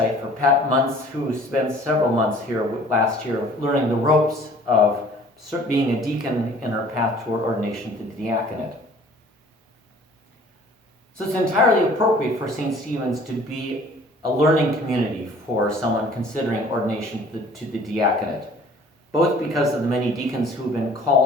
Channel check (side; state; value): both; normal; correlation 0.51